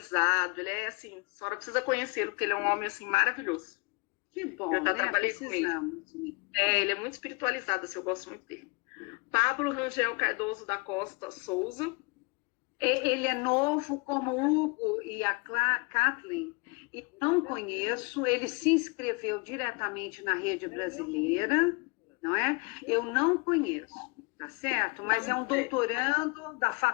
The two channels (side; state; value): right; quieter; 29.8 dB